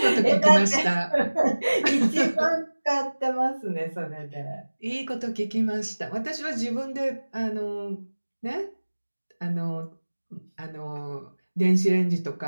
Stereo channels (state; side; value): inverted; both; correlation -1.00